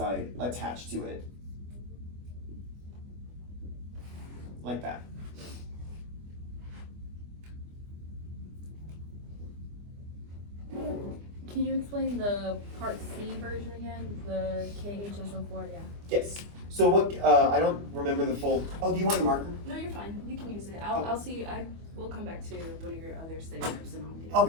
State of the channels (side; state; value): left; late; 25 ms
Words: attached to it. Like that. Can you explain the part C version again? The KHSO4, yeah. Yes. So what, I don't remember the full, oh, do you want a marker? No, you're fine. You can use it. I'll see. We'll come back to one of your other study groups and I'll get it.